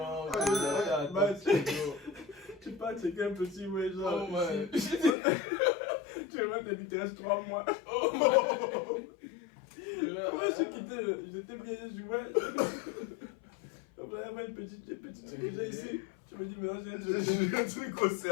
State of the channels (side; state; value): right; drops out; at 5.2 s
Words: Tu peux checker un petit, ouais, genre. Oh, man. Tu vas te dire, il reste 3 mois. Oh, man. Comment j'ai quitté, j'étais bien, je jouais. On va avoir une petite truc que j'ai ici. Tu me dis, mais non, J'ai un truc au